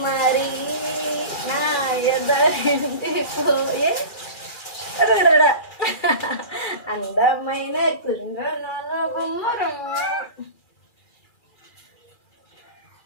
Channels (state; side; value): late; right; 2.4 ms